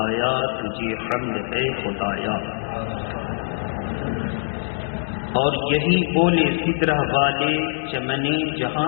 تجھے حمد ہے خدایا۔ اور یہی بولے فکرہ والے چمنے جہاں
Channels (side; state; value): right; silent; digital silence